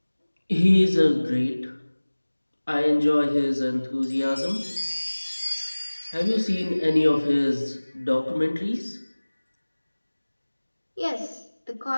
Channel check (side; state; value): both; inverted; correlation -1.00